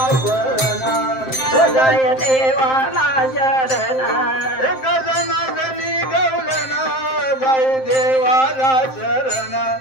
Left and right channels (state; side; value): late; right; 7.6 ms